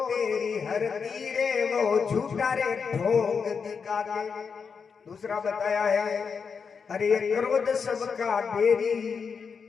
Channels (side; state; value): right; quieter; 5.8 dB